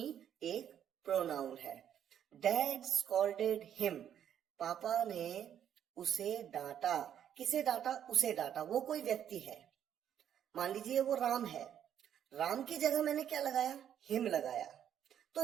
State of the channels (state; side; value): quieter; left; 9.7 dB